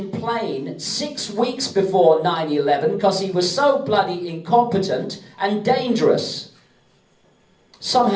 plane 6 weeks before 9/11 because he was so bloody incompetent and dangerous.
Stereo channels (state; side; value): identical; both; correlation 1.00